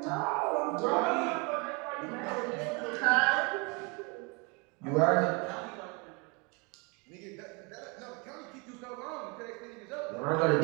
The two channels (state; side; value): quieter; left; 30.7 dB